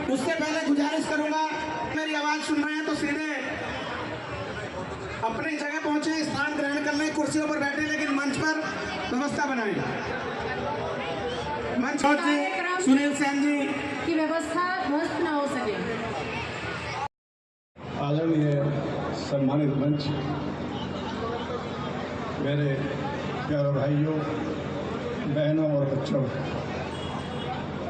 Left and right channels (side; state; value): both; identical; correlation 1.00